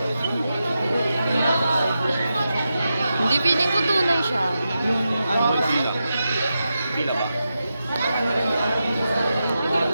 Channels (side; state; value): both; inverted; correlation -0.89